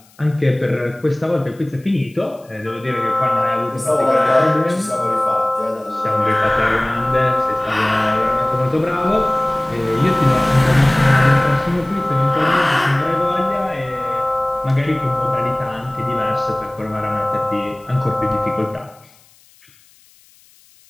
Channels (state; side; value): noise; left; hiss, 29 dB below the sound